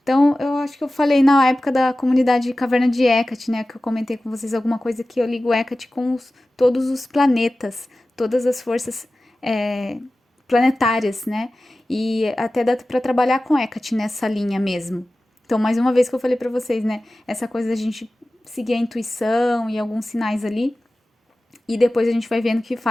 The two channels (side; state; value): both; normal; correlation 0.96